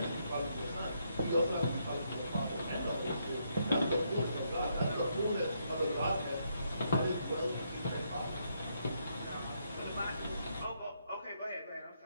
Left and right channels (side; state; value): both; inverted; correlation -0.76